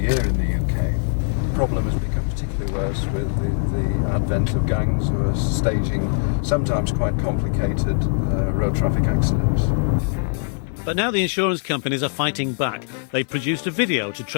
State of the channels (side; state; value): right; silent; digital silence